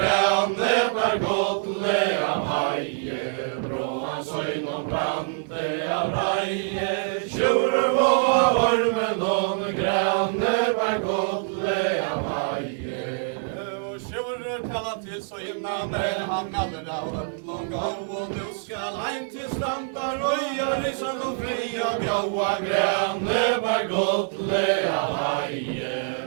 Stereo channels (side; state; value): left; silent; digital silence